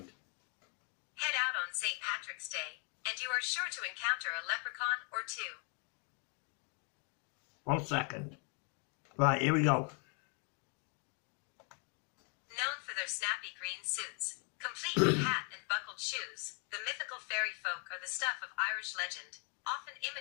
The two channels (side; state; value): right; quieter; 37.6 dB